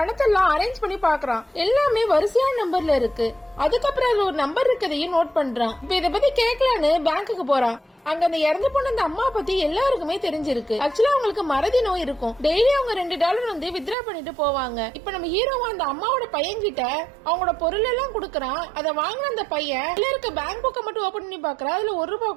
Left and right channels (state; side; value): drops out; left; at 14.0 s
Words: அரேஞ்ச் பண்ணி பாக்குறான். எல்லாமே வரிசையான நம்பர்ல இருக்கு. அதுக்கப்புறம் அதுல ஒரு நம்பர் இருக்கதையும் நோட் பண்றான். இப்ப இத பத்தி கேட்கலான்னு பேங்க்குக்கு போறான். அங்க அந்த இறந்து போன அந்த அம்மா பத்தி எல்லாருக்குமே தெரிஞ்சிருக்கு. ஆக்சுவலா அவங்களுக்கு மறதி நோய் இருக்கும். டெய்லி அவங்க $2 வந்து வித்ரா பண்ணிட்டு போவாங்க. இப்ப நம்ம ஹீரோவா அந்த அம்மாவோட பையன் கிட்ட அவங்களோட பொருள் எல்லாம் குடுக்கறான். அதை வாங்கின அந்த பையன் இருக்க பேங்க் புக்கை மட்டும் ஓபன் பண்ணி பாக்குறான். அதுல $1